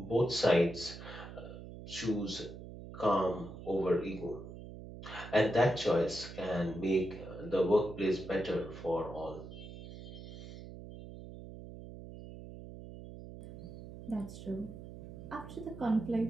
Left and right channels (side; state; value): right; noise; hum, 12 dB below the sound